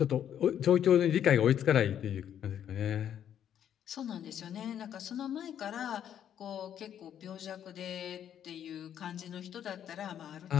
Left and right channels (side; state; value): right; quieter; 9.7 dB